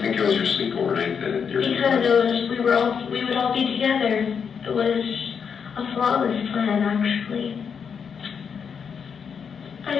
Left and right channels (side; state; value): right; quieter; 6.7 dB